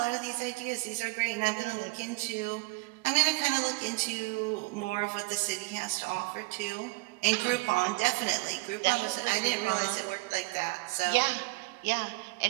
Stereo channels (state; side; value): quieter; left; 23.4 dB